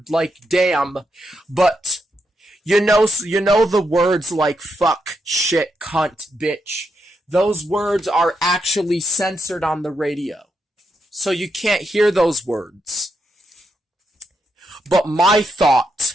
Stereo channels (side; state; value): both; normal; correlation 0.82